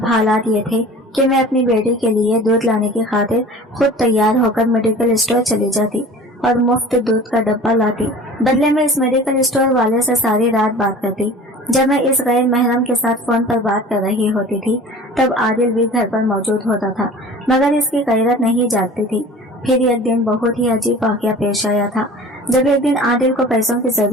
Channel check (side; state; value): both; normal; correlation 0.42